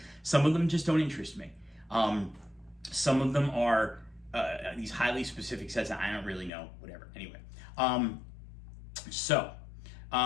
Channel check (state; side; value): drops out; right; at 6.5 s